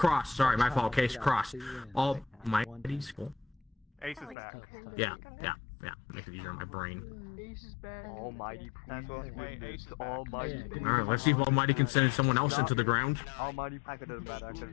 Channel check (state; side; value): drops out; right; at 4.4 s